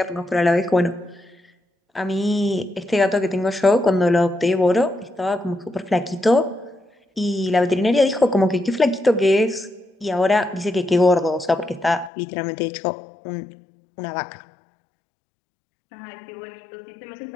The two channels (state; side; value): drops out; right; at 12.1 s